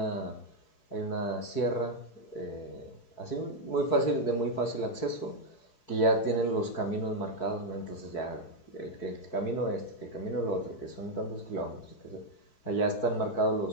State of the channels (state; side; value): late; right; 4.6 ms